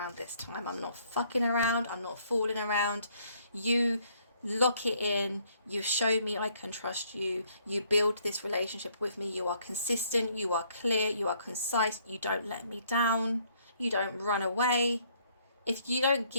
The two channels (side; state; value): both; inverted; correlation -0.66